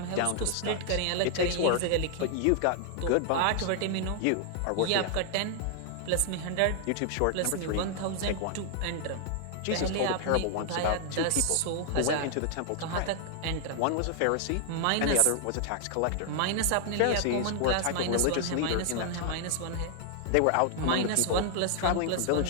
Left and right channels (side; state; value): both; different; correlation 0.00